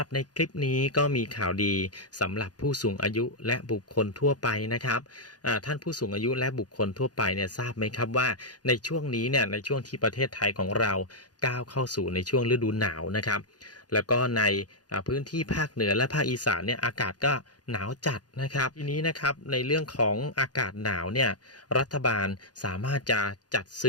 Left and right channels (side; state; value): right; late; 0.69 ms